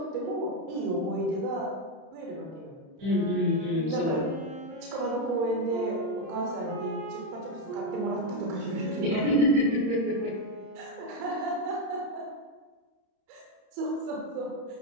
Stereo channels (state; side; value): late; left; 31 ms